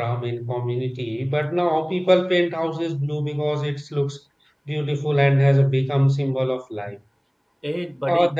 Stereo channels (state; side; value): identical; both; correlation 1.00